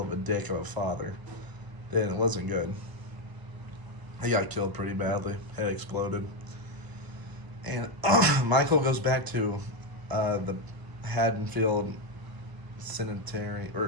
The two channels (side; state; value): left; late; 1.0 ms